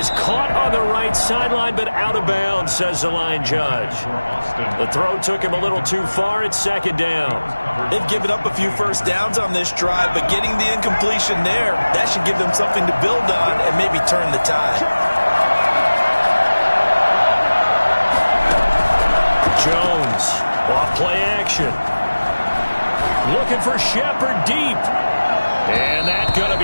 caught on the right sideline, but out of bounds, says the line judge. The throw took him a little too far. It's 2nd down. They've given up a few first downs on this drive, but getting the incompletion there, that should give them something to build on and maybe turn the tide. Jones, off play action. Looking for Shepard deep. And that's going to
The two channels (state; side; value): inverted; both; correlation -1.00